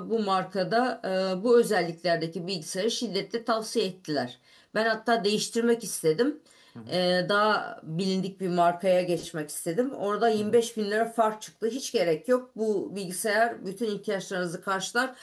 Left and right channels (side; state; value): both; identical; correlation 1.00